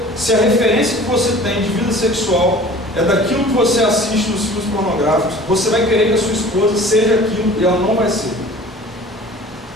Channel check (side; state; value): both; normal; correlation 0.44